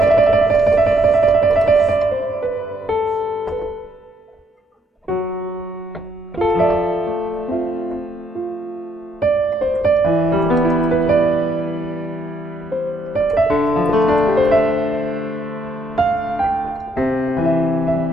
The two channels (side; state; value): both; normal; correlation 0.72